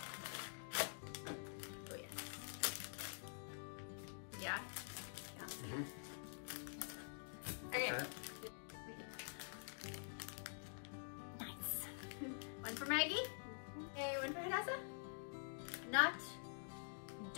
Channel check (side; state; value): right; silent; digital silence